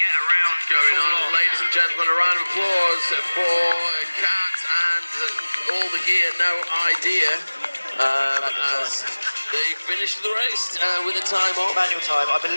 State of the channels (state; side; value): inverted; both; correlation -1.00